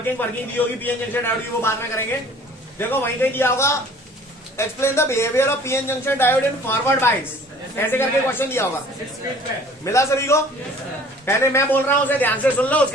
दी होगी पीएन जंक्शन डायोड की, वो बाद में करेंगे। देखो वहीं कहीं दिया होगा, explain the behaviour of PN junction diode in forward bias, ऐसे करके क्वेश्चन दिया होगा। मिला सभी को? पहले मैं बोल रहा हूं, उसे ध्यान से सुन लो,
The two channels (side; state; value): both; normal; correlation 0.50